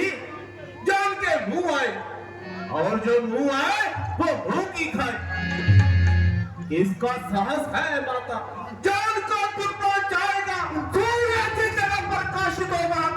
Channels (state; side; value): identical; both; correlation 1.00